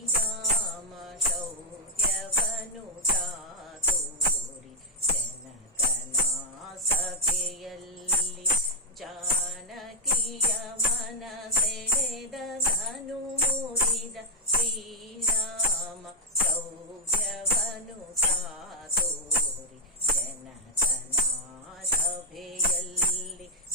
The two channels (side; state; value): both; normal; correlation 0.00